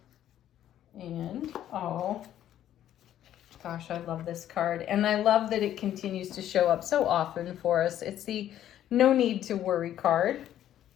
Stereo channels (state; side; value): quieter; right; 11.5 dB